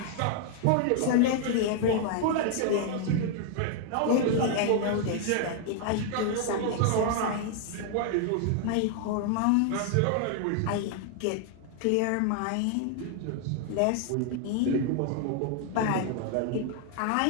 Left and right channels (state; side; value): different; both; correlation 0.00